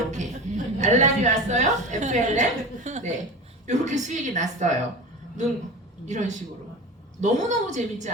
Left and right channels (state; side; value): normal; both; correlation 0.31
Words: 알람이 왔어요. FLM. 네. 요렇게 수익이 났어요. 이런 식으로. 너무너무 재밌지